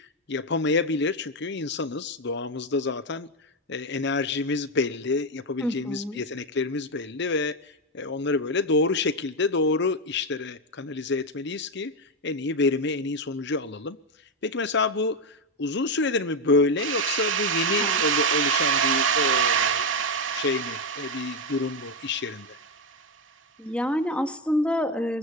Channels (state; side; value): normal; both; correlation 0.09